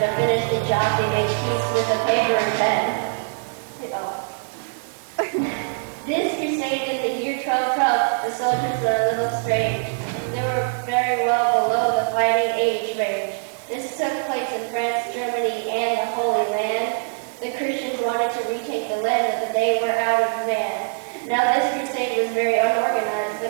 to finish the job they made peace with a paper and pen. This crusade in the year 1212, the soldiers were a little strange. They were very well below the fighting age range. This took place in France, Germany, and the Holy Land. The Christians wanted to retake the land, but they were out of man. Now this crusade was very unorganized, but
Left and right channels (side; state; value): left; silent; 61 dB below the other